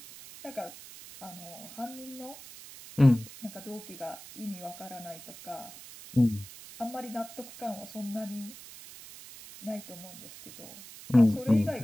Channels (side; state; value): right; noise; hiss, 15 dB below the sound